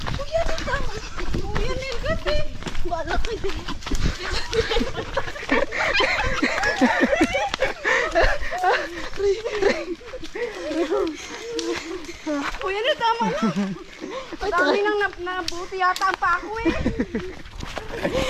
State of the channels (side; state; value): both; identical; correlation 1.00